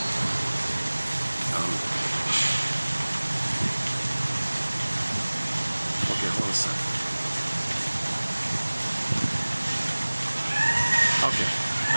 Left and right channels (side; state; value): both; inverted; correlation -1.00